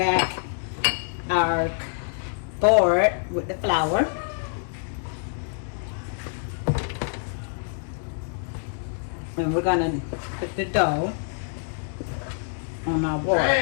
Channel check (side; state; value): right; silent; digital silence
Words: our board with the flour. And we're gonna put the dough on our board.